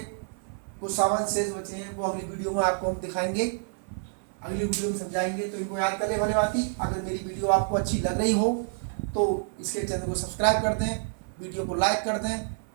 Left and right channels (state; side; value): silent; left; 59 dB below the other